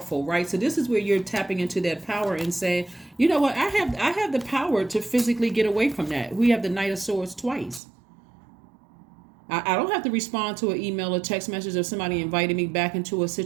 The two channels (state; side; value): drops out; left; at 7.8 s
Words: right? So this is where you're tapping into that power and saying, you know what, I have the power to physically get away from that. We have the Knight of Swords twice. I don't have to respond to an email or text message of somebody inviting me back into a